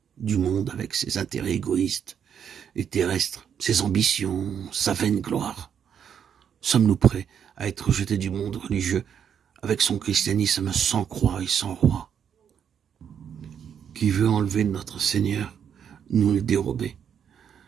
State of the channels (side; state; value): left; quieter; 8.1 dB